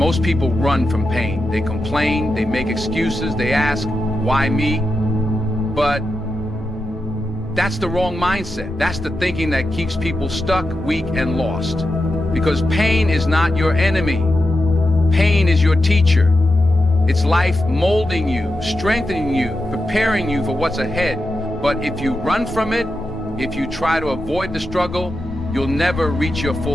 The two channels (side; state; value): both; normal; correlation 0.88